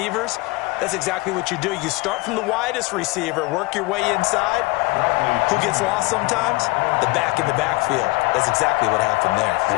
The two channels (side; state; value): right; quieter; 24.2 dB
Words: that's exactly what you do. You start from the widest receiver, work your way inside. Who gets lost sometimes? The back in the backfield. That's exactly what happened there.